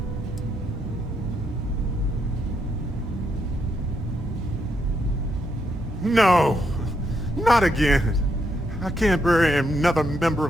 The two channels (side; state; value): both; normal; correlation 0.78